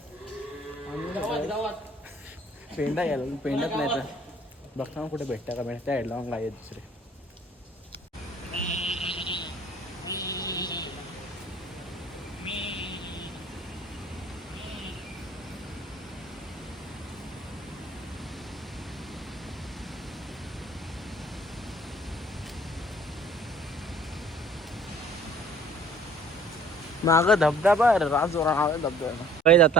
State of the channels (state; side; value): normal; both; correlation 0.54